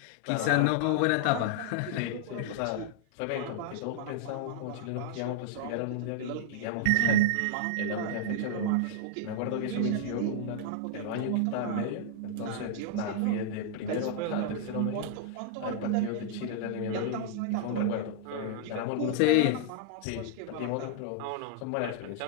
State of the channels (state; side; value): different; both; correlation -0.01